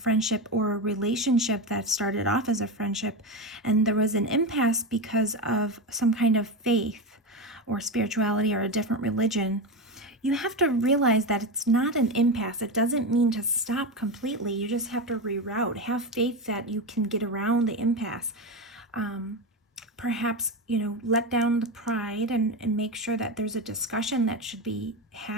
or a relationship that started off as a friendship, and there was an impasse because of some kind of faith or spirituality or a different religion. You have to realize that it's not an impasse. It doesn't mean to stop completely. You just have to reroute. Have faith that you can get around the impasse. Perhaps, let down the pride and make sure that there's a discussion that should be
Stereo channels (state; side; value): normal; both; correlation 0.17